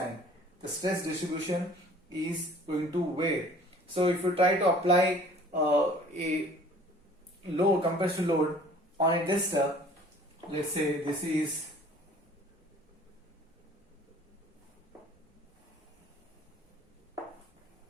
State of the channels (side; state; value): both; normal; correlation 0.51